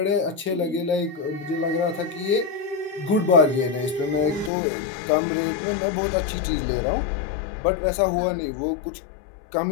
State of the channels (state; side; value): drops out; right; at 4.5 s